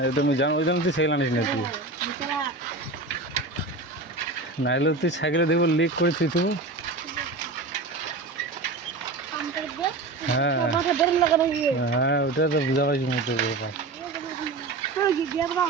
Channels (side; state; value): left; quieter; 3.4 dB